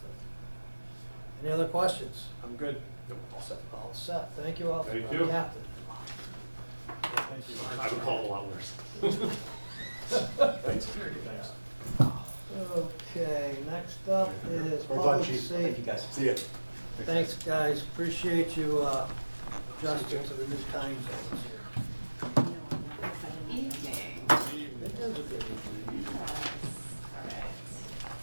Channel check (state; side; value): inverted; both; correlation -1.00